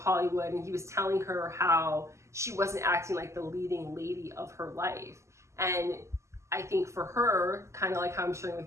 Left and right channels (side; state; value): left; late; 0.13 ms